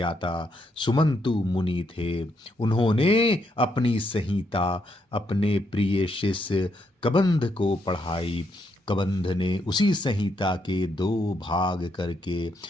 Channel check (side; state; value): both; normal; correlation 0.77